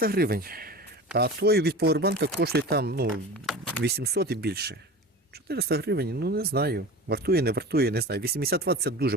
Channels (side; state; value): both; normal; correlation 0.33